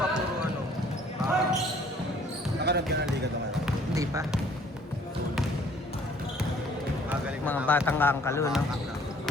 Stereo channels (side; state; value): both; normal; correlation 0.57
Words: puro ano. Nakarap ka ng liga ito ngayon. Hindi pa. Magaling Mga batang kangkalo, no?